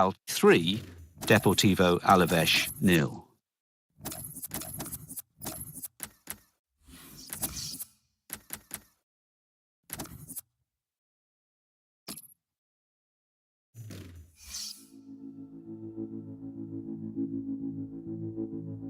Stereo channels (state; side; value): identical; both; correlation 1.00